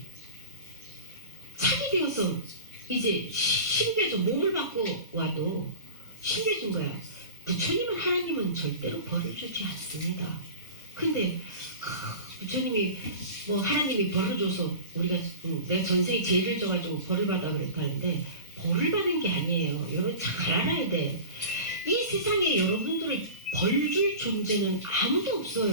차게 되어서 이제 심겨져 몸을 받고 와도 심겨진 거야. 부처님은 하나님은 절대로 벌을 주지 않습니다. 근데 부처님이 뭐 하나님이 벌을 줘서 우리가 내가 전생에 죄를 져가지고 벌을 받아 그랬다는데 벌을 받은 게 아니에요. 여러분 잘 알아야 돼. 이 세상에 여러분들을 벌 줄 존재는 아무도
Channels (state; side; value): inverted; both; correlation -0.34